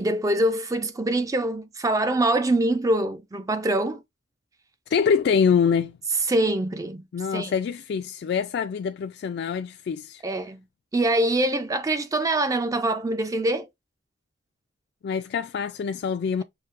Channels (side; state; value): both; normal; correlation 0.41